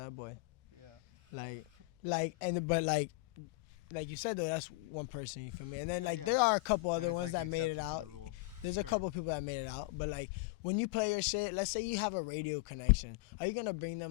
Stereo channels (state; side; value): quieter; right; 23.3 dB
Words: boy. Yeah. Like you said though, that's one person. You feel me? And then Yeah, yeah. there are a couple other That is ones like the that made it exception to out. the rule. There's a Sure. couple people that made it out, but like when you play your shit, let's say you have a radio connection, are you gonna bring